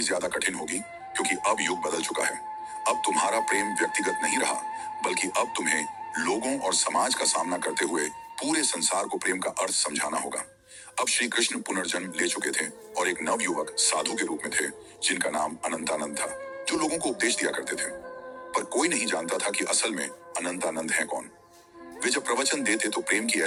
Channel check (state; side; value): identical; both; correlation 1.00